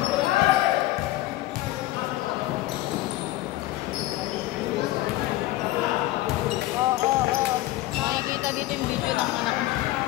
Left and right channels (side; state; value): right; quieter; 16.5 dB